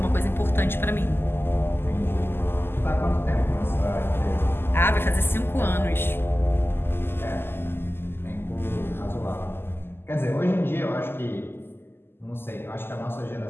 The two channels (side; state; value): right; late; 0.11 ms